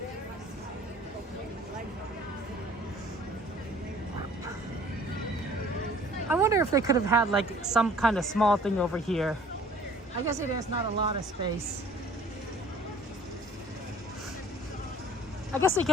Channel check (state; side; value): normal; both; correlation 0.51